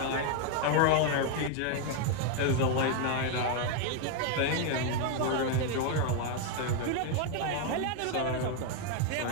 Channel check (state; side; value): different; both; correlation 0.01